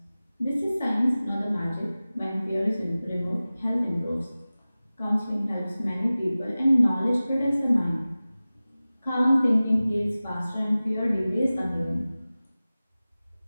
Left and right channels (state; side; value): inverted; both; correlation -0.97